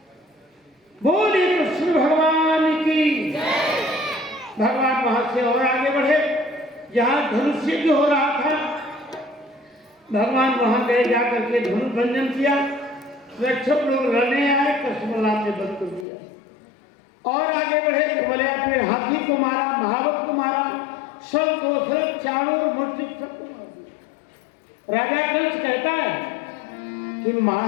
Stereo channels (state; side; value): drops out; right; at 16.1 s